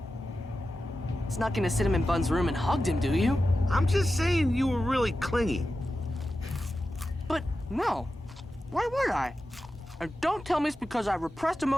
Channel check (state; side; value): normal; both; correlation 0.92